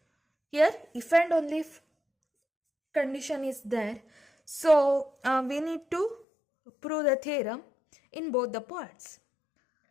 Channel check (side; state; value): right; drops out; at 6.2 s